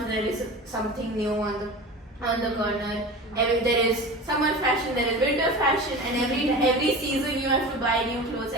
there is something new on the corner. There is summer fashion, there is winter fashion, and every season you have to buy new clothes.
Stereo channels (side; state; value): both; normal; correlation 0.33